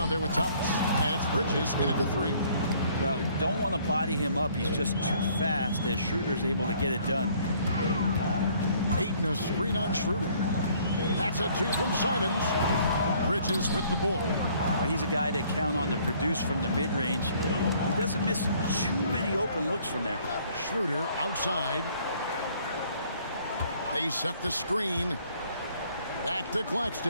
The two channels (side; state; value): both; inverted; correlation -0.60